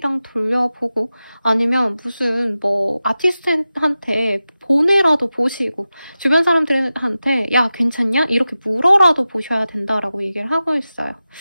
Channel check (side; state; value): both; inverted; correlation -0.94